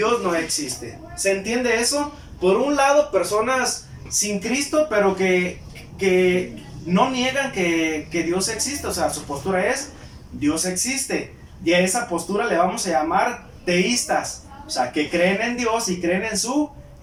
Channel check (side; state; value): both; identical; correlation 1.00